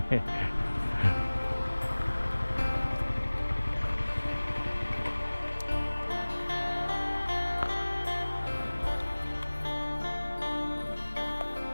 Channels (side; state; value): both; inverted; correlation -1.00